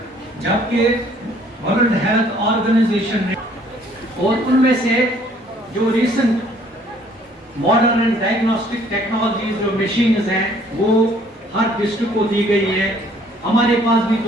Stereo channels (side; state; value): both; normal; correlation 0.60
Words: जबकि वर्ल्ड हेल्थ ऑर्गेनाइजेशन ने और उनमें से जो recent modern and diagnostic technologies जो मशीन्स हैं वो हर डिस्ट्रिक्ट को दी गई है। हमारे पास भी